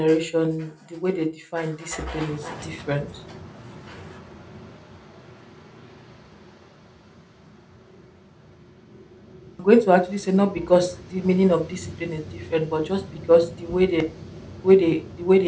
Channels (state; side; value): identical; both; correlation 1.00